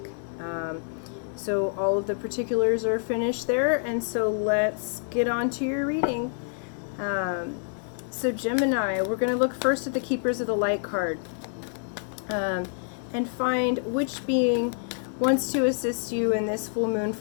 So all of the particulars are finished there, and so let's get on to your reading. So Gemini, we're going to look first at the Keepers of the Light card and find which being wants to assist you in this full moon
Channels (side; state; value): right; silent; digital silence